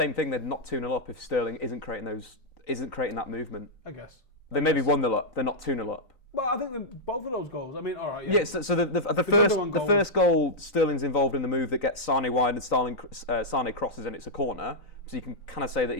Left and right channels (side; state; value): right; late; 3.9 ms